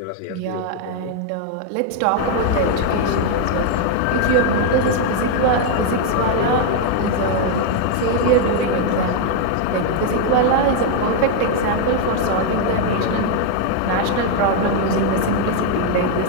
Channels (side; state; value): both; different; correlation 0.00